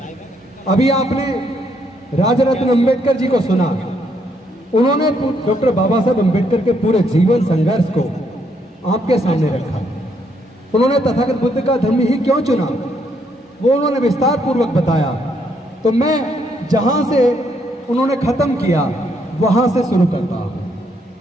अभी आपने राजरत्न अम्बेडकर जी को सुना, उन्होंने डॉक्टर बाबा साहब अम्बेडकर के पूरे जीवन संघर्ष को आपके सामने रखा। उन्होंने तथागत बुद्ध का धर्म ही क्यों चुना, वो उन्होंने विस्तार पूर्वक बताया। तो मैं जहां से उन्होंने खत्म किया वहां से शुरू करता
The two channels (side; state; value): both; normal; correlation 0.73